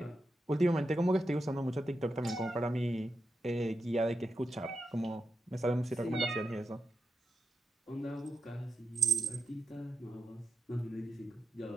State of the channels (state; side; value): normal; both; correlation 0.86